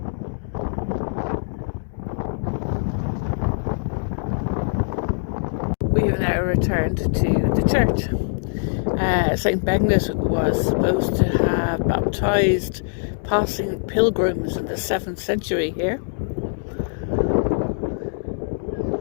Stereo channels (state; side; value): silent; right; digital silence